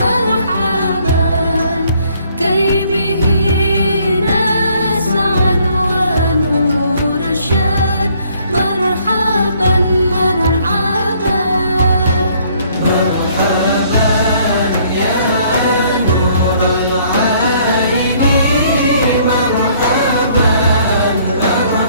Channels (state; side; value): inverted; both; correlation -0.63